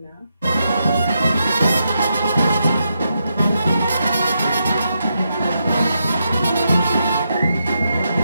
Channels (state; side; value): inverted; both; correlation -0.83